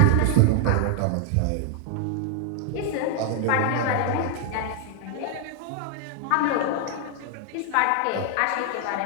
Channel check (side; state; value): both; different; correlation 0.00